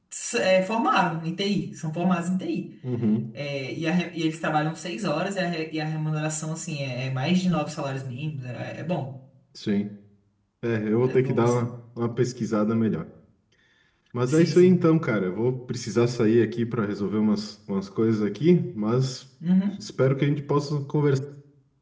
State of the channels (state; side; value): identical; both; correlation 1.00